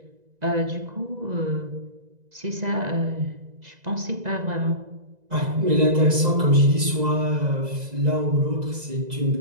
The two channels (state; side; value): late; left; 2.0 ms